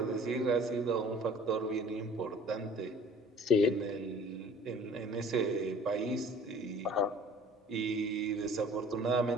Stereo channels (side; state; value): both; normal; correlation 0.49